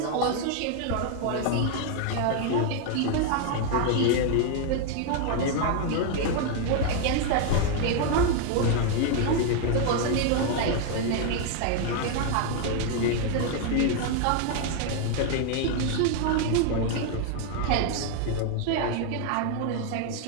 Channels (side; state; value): both; different; correlation 0.00